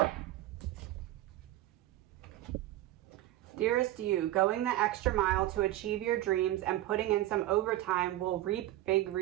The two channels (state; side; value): quieter; left; 15.3 dB